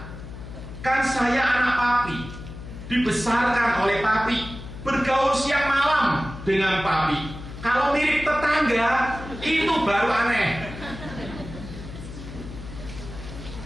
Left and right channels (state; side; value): noise; left; hum, 12 dB below the sound